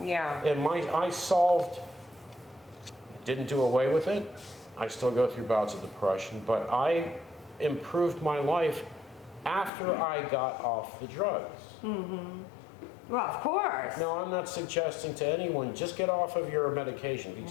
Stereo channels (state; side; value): drops out; right; at 9.7 s